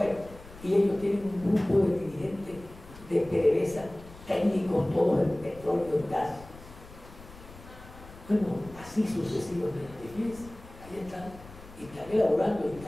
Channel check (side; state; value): left; noise; rumble, 19 dB below the sound